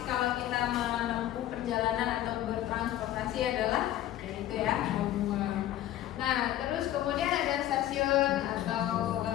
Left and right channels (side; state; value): right; quieter; 13.2 dB